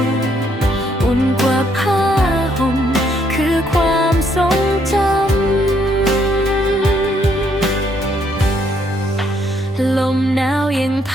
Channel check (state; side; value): normal; both; correlation 0.71